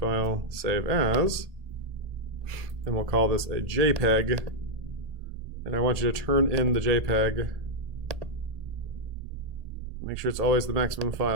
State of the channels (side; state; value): left; late; 1.8 ms